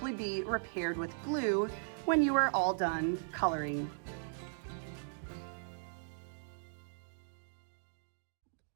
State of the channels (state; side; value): silent; left; digital silence